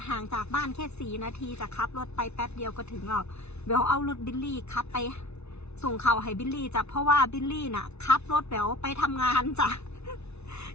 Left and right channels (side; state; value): right; late; 0.81 ms